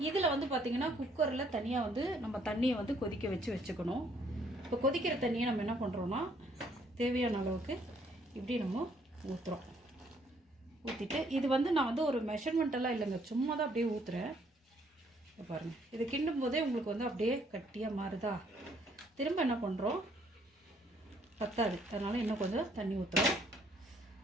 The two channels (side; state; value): both; normal; correlation 0.66